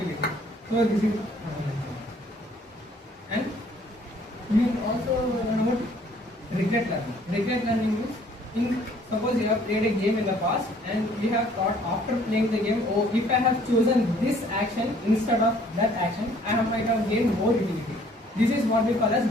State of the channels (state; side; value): normal; both; correlation 0.59